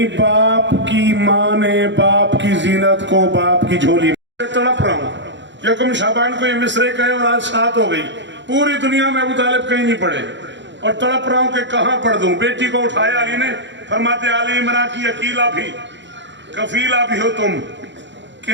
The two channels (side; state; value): left; late; 0.53 ms